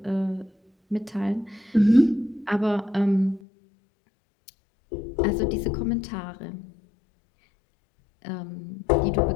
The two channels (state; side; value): drops out; right; at 3.4 s